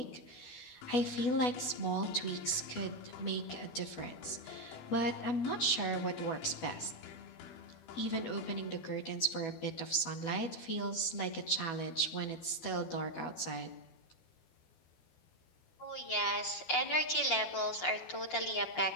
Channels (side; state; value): right; late; 12 ms